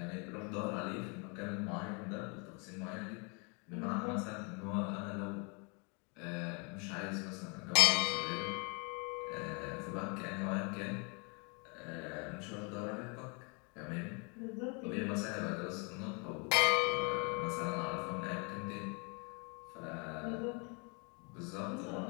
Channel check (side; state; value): right; quieter; 33.9 dB